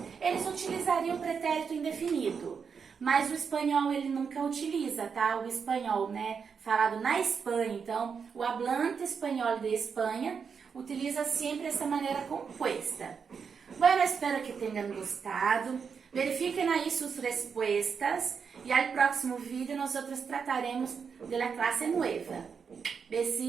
eles utilizariam o pretérito indefinido. Mas o espanhol ele nunca utiliza, tá? O espanhol, né, falado na Espanha. Então, o hablante espanhol de Espanha utiliza sempre essa maneira composta. Bueno, espero que tenham gostado. Verifiquem aí suas respostas e al próximo vídeo nós trataremos de la clase nueva.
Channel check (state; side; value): quieter; left; 6.2 dB